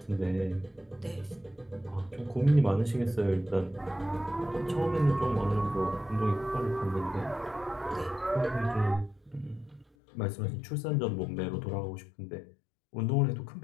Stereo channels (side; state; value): right; drops out; at 9.9 s